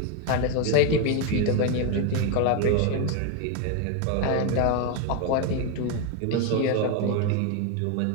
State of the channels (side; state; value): both; different; correlation 0.01